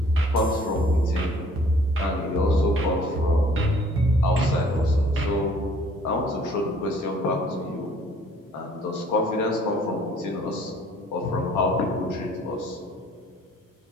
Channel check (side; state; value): both; normal; correlation 0.57